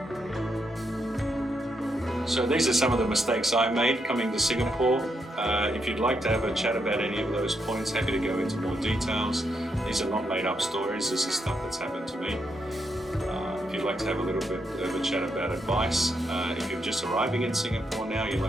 So these are some of the mistakes I made coming to Singapore. If you'd like to have a chat about any of those points, happy to go into more details. These are not made up stories, this is stuff that's happened to me. If you'd like to have a little bit of a chat about advice, if you're just arriving in Singapore now, you'd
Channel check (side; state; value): both; normal; correlation 0.80